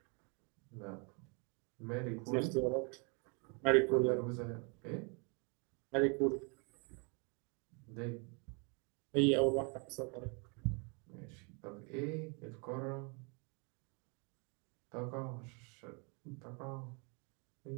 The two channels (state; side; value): quieter; left; 34.2 dB